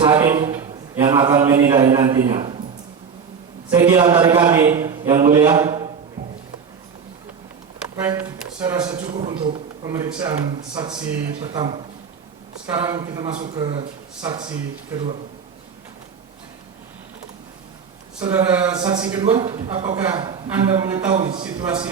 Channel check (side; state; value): left; quieter; 6.3 dB